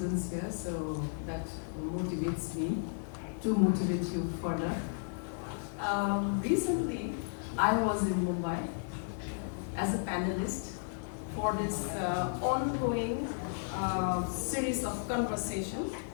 here, so that motivates me to motivate you further. Recently, I was in Mumbai as a panelist for this ongoing series of conversations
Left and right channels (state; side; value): silent; right; digital silence